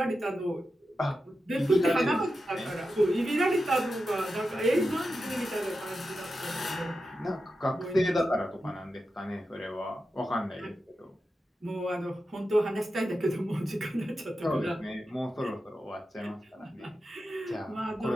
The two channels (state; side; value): normal; both; correlation 0.90